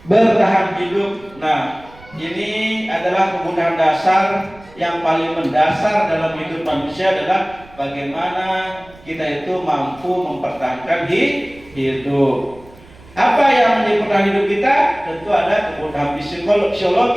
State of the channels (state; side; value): noise; right; rumble, 23 dB below the sound